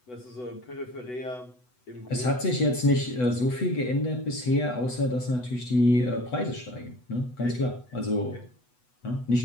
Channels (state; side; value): late; right; 8.1 ms